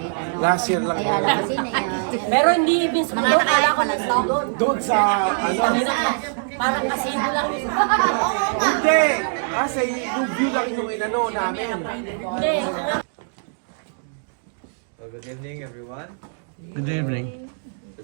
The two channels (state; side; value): silent; left; digital silence